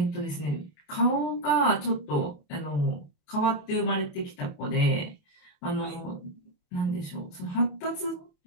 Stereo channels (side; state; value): right; late; 28 ms